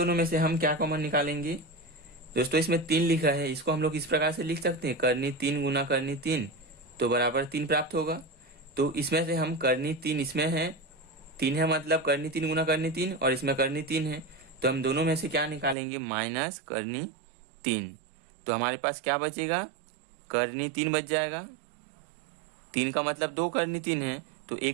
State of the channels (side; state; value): left; drops out; at 15.8 s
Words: में से हम क्या कॉमन निकालेंगे दोस्तों, इसमें 3 लिखा है, इसको हम लोग इस प्रकार से लिख सकते हैं करनी 3 गुना करनी 3 तो बराबर 3 प्राप्त होगा। तो इसमें से हम करनी 3 इसमें है 3 है मतलब करनी 3 गुना करनी 3 और इसमें करनी 3 है, तो हम दोनों में से क्या निकालेंगे माइनस करनी 3। तो हमारे पास क्या बचेगा करनी 3 बच जाएगा। 3 का मतलब 2 करनी 3 है तो